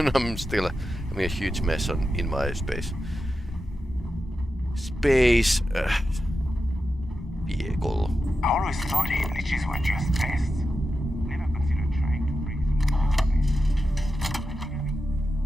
I'm still having a huge mess in my space vehicle. I always thought glitches were just pests. Never considered trying to break them.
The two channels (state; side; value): normal; both; correlation 0.90